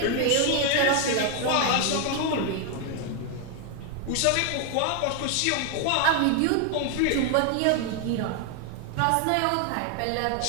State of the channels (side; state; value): both; different; correlation 0.00